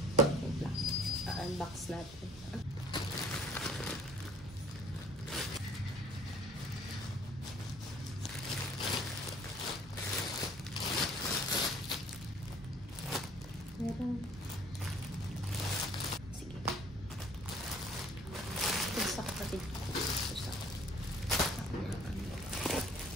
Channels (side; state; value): both; normal; correlation 0.55